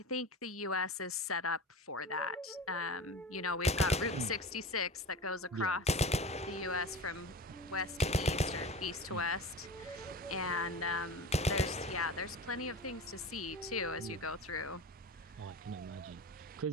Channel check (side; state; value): both; normal; correlation 0.31